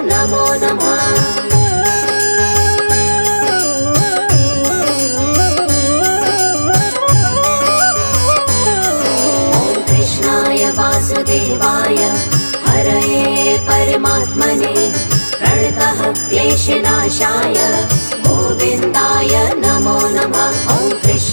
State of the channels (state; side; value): inverted; both; correlation -1.00